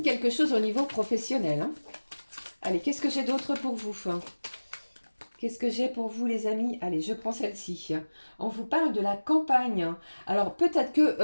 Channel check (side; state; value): both; inverted; correlation -1.00